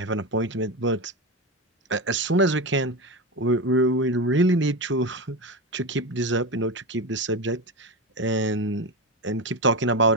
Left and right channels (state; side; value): normal; both; correlation 0.18